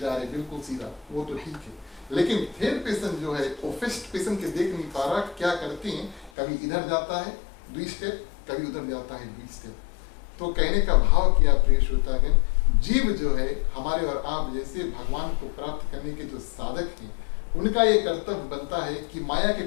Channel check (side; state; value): right; drops out; at 6.3 s